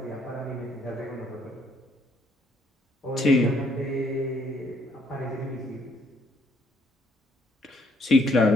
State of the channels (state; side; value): normal; both; correlation 0.68